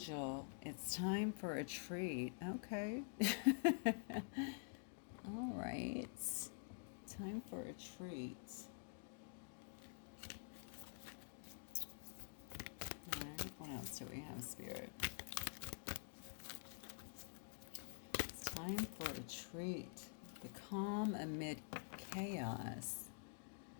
it's time for a treat. Okay. All right. Time for a treat. All right. What else do we have, Spirit? It's time for a treat. The calm amid chaos.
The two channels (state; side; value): silent; right; digital silence